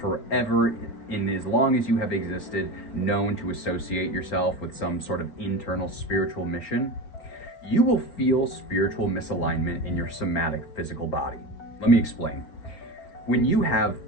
in as long as you have existed, known to associate yourself with some sort of internal spiritual mission, you will feel spiritual misalignment in your somatic physical body. Let me explain. When you have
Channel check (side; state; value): right; late; 4.4 ms